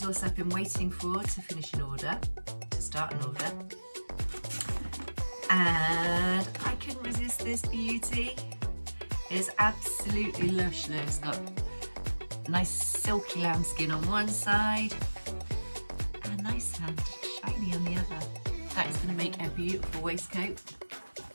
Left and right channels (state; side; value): inverted; both; correlation -1.00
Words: I've been waiting for to finish an order, to start an order. And I couldn't resist this beauty. It's absolutely lush. Look, it's got nice silky lambskin on one side and a nice and shiny on the other. That is going to make a beautiful waistcoat